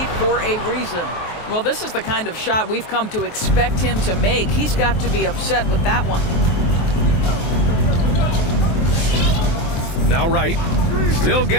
for a reason. Well, this is the kind of shot we've come to expect him to make. He's got to be upset with that one. Now Wright, still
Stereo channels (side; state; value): right; late; 23 ms